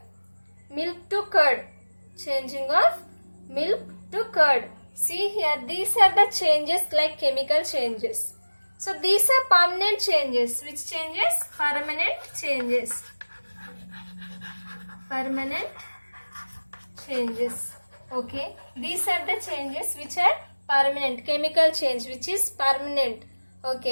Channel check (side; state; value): both; inverted; correlation -1.00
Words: milk to curd. Changing of milk to curd. See here, these are the changes like chemical changes. So these are permanent changes. Which changes? Permanent changes. Permanent changes. Okay. These are the changes which are permanent. Chemical change which is permanent.